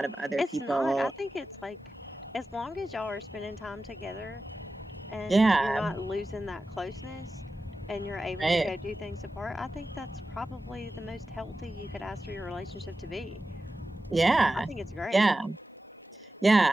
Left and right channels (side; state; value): both; normal; correlation 0.93